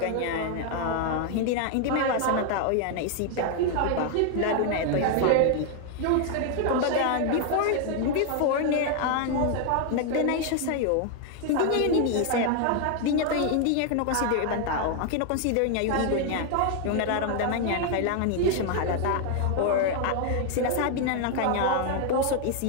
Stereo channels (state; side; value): different; both; correlation 0.00